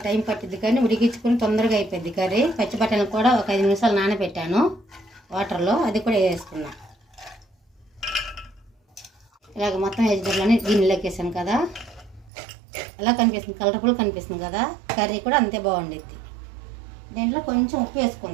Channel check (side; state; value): left; drops out; at 12.3 s